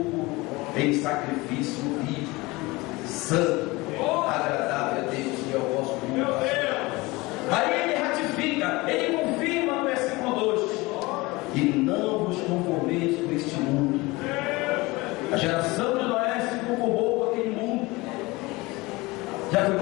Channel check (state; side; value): quieter; right; 22.5 dB